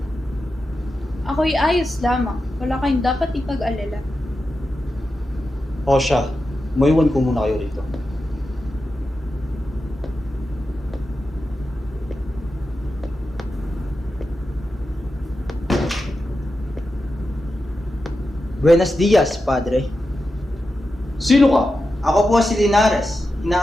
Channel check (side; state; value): both; normal; correlation 0.90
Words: Ako'y ayos lamang. Wala kayong dapat ipag-alala. O siya, maiwan ko muna kayo rito. Buenos dias, Padre. Sino ka? Ako po si Linares,